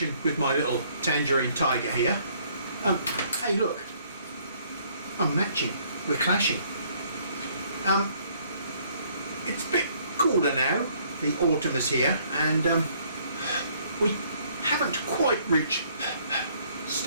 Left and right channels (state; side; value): inverted; both; correlation -0.64